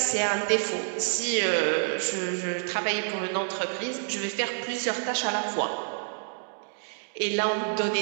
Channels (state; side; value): silent; left; digital silence